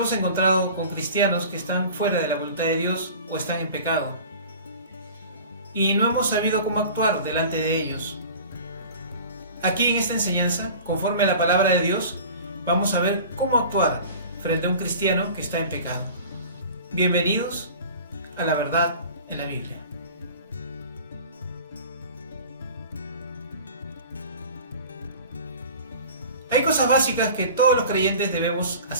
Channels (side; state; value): both; inverted; correlation -0.41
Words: encontrado con cristianos que están fuera de la voluntad de Dios o están en pecado y no hemos sabido cómo actuar delante de ellos. Aquí en esta enseñanza, conforme a la palabra de Dios, vamos a ver cómo actuar frente a un cristiano que está en pecado. Bienvenidos a la verdad en la Biblia. Hay cosas básicas que todos los creyentes debemos